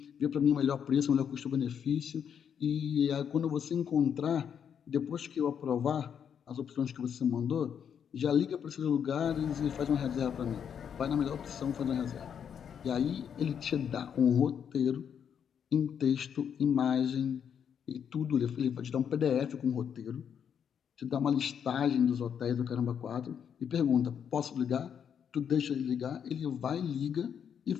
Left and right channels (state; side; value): quieter; right; 8.0 dB